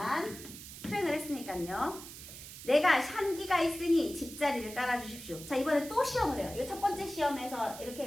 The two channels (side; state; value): right; noise; hiss, 13 dB below the sound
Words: 수행을 했으니까요. 내가 한기가 있으니 집자리를 깔아주십시오. 자, 이번에 또 시험을 해요. 이거 첫 번째 시험에서 이렇게